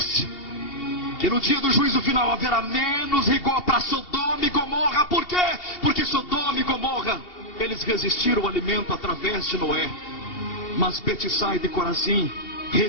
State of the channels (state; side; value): late; right; 2.7 ms